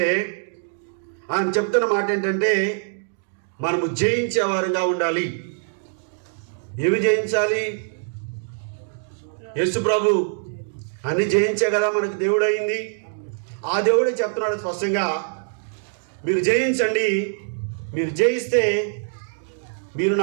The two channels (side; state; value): left; silent; digital silence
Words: ఆయన చెప్తున్న మాట ఏంటంటే, మనము జయించేవారుగా ఉండాలి. ఏమి జయించాలి? యేసు ప్రభు అన్ని జయించే కదా మనకు దేవుడు అయింది. ఆ దేవుడే చెప్తున్నాడు స్పష్టంగా, మీరు జయించండి, మీరు జయిస్తే మీరు